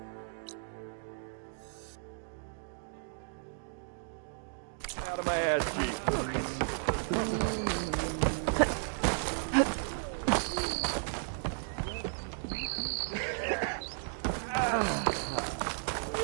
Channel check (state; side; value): silent; left; digital silence